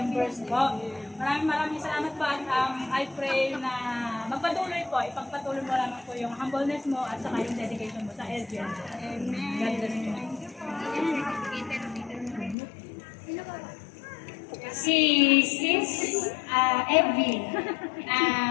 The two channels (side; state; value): right; drops out; at 12.6 s